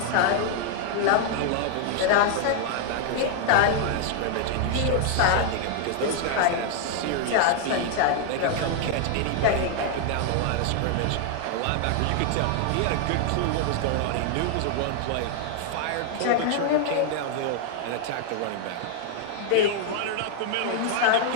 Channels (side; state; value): both; different; correlation 0.00